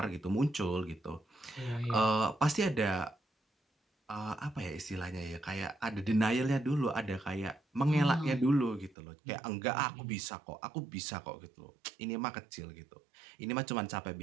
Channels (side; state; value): left; drops out; at 9.0 s